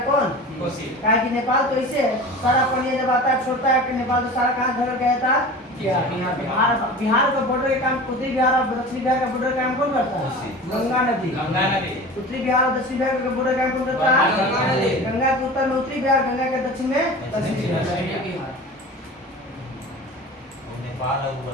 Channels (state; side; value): normal; both; correlation 0.35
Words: कौन? कोसी। कहा कि नेपाल तो इसे सारा पानी जब आता है छोड़ता है कि नेपाल तो सारा कहाँ घर गया था? बिहार का बॉर्डर का काम उत्तरी बिहार और दक्षिणी बिहार का बॉर्डर का काम कौन करता है? गंगा नदी। गंगा नदी। उत्तरी बिहार और दक्षिणी बिहार का बॉर्डर का काम कौन करता है? गंगा नदी। गंगा के उत्तर में उत्तरी बिहार, गंगा के दक्षिण में दक्षिणी बिहार। और नेपाल और